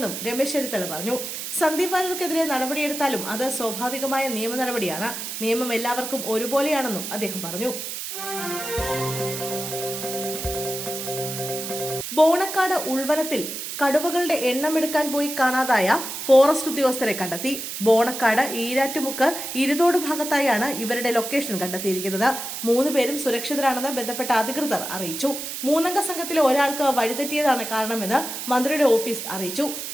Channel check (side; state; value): right; noise; hiss, 6 dB below the sound